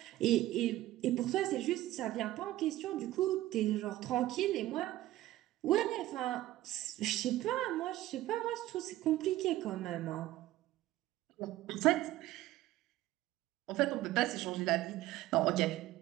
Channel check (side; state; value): left; quieter; 15.5 dB